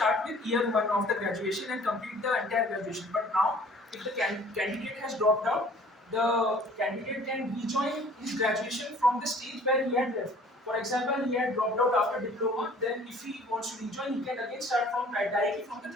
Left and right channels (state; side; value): normal; both; correlation 0.52